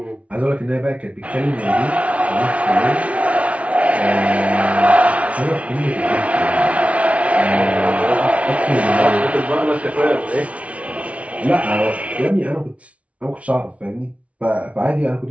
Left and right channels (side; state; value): left; late; 0.065 ms